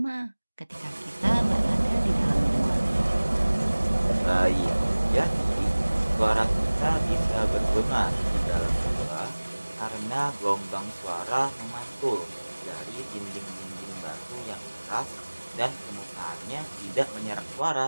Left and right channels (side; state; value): both; inverted; correlation -1.00